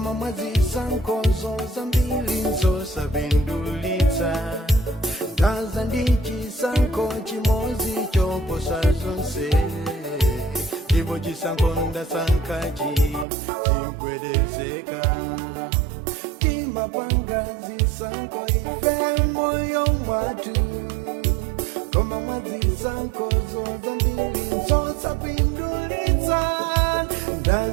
mwazisankho zambiri zosapindulitsa. Ndaza ndi chisankho chimodzi choposa zonse, ndipo chisankho ndasankhachi chigwedezeka. Timapanga zisankho ife moyo mwatu, koma mwazisankho zambiri zosapindulitsa.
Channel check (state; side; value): drops out; left; at 13.2 s